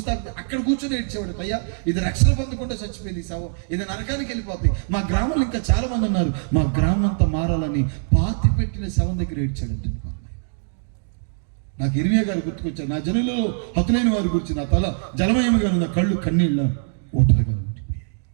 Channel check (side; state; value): left; silent; 64 dB below the other